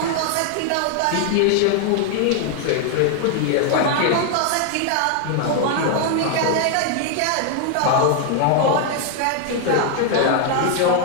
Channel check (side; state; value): both; different; correlation 0.00